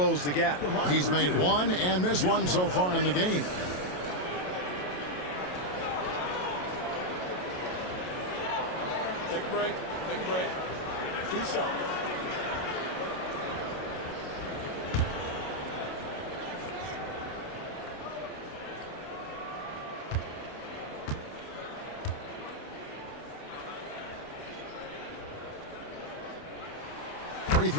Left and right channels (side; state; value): right; late; 28 ms